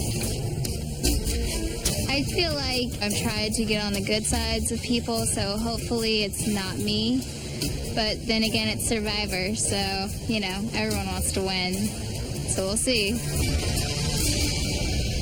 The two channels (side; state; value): both; identical; correlation 1.00